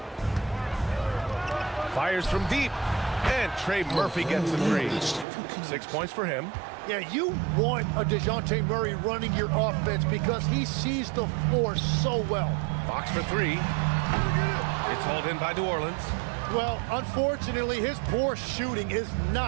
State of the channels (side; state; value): left; drops out; at 5.2 s